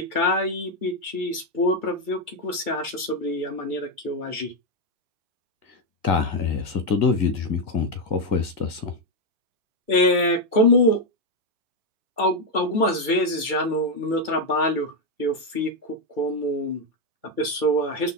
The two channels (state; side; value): late; left; 2.3 ms